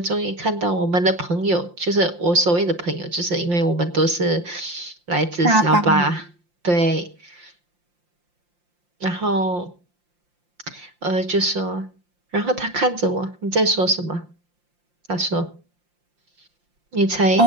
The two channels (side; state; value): left; late; 5.7 ms